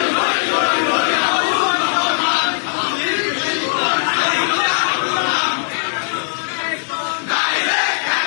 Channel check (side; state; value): right; silent; 60 dB below the other